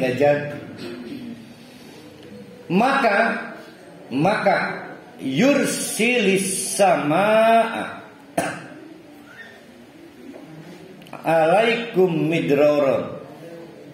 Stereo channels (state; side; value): identical; both; correlation 1.00